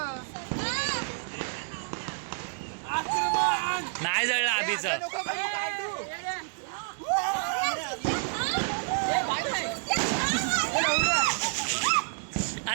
नाही जळलं अभिचं.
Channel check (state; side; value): silent; left; 59 dB below the other